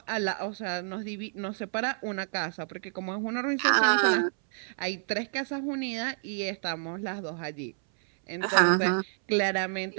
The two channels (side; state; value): left; silent; 58 dB below the other